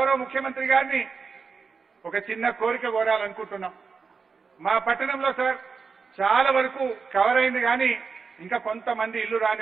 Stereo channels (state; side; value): quieter; left; 5.2 dB